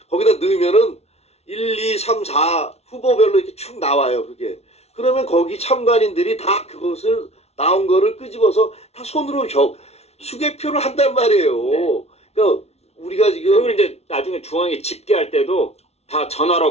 거기다 넣으면은 1, 2, 3, 4 후보별로 이렇게 축 나와요. 그게. 그러면 거기 참관인들이 다 그것을 나온 거를 끄집어서 다 손으로 수개표를 한단 말이에요. 네. 그러니까 우리가 지금 그걸 이제 나중에 중앙에 집계할 때도 다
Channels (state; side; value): late; right; 0.31 ms